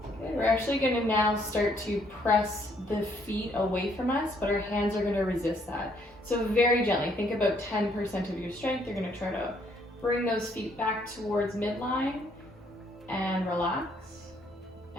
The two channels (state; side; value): normal; both; correlation 0.68